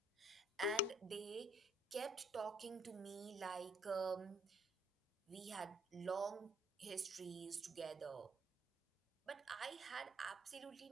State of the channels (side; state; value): both; normal; correlation 0.61